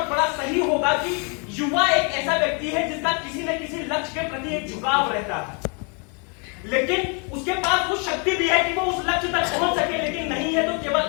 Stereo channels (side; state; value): right; quieter; 36.0 dB